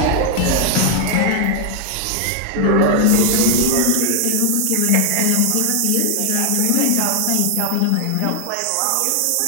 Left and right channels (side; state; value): both; different; correlation 0.00